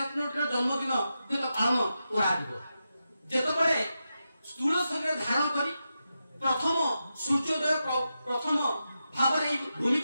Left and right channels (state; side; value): inverted; both; correlation -0.89